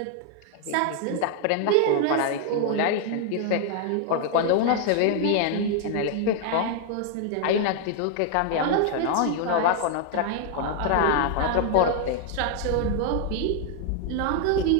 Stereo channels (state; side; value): different; both; correlation 0.00